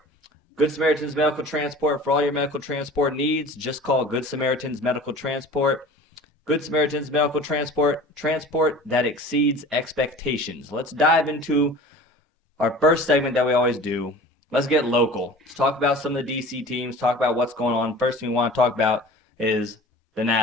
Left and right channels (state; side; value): normal; both; correlation 0.41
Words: Good Samaritans Medical Transport, for all your medical transport needs, just call Good Samaritans Medical Transport. Good Samaritans Medical Transport that exceeds expectations. Let's dive into our first segment that we always do. Let's get local. Let's talk about some of the DC teams, talk about what's going on. First thing we want to talk about is the